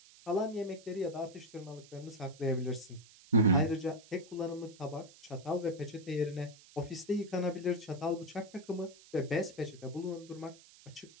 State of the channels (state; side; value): noise; right; hiss, 22 dB below the sound